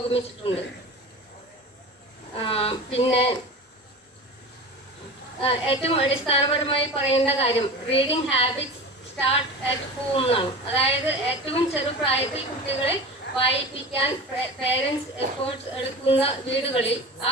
പിന്നെ ഏറ്റവും അടിസ്ഥാനപരമായി പറയേണ്ട കാര്യം, reading habits start at home എന്നാണ്. അതായത് ഏറ്റവും ചെറുപ്രായത്തിൽ കുട്ടികളെ വായിപ്പിക്കാൻ പേരൻസ് എഫേർട്സ് എടുക്കുന്ന വീടുകളിൽ ആ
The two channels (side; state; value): both; normal; correlation 0.32